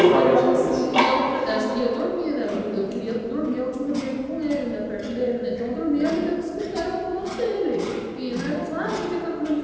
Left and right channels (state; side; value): identical; both; correlation 1.00